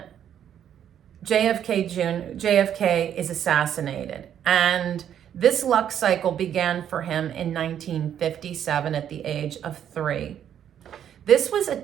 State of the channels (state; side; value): quieter; left; 9.6 dB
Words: JFK is assassinated. And this luck cycle began for him in 1957 at the age of 3. This was a